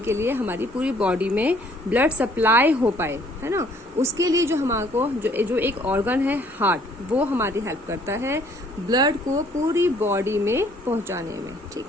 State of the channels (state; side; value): normal; both; correlation 0.61